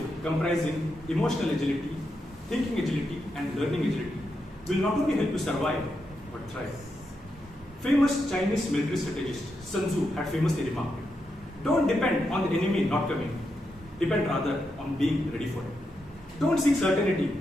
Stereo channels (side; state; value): both; normal; correlation 0.84